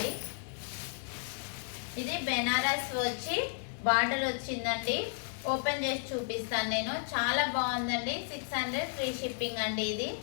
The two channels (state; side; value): silent; right; digital silence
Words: ఇది బెనారస్ వచ్చి బార్డర్ వచ్చిందండి. ఓపెన్ చేసి చూపిస్తాను నేను. చాలా బాగుందండి. 600 ఫ్రీ షిప్పింగ్ అండి. ఇది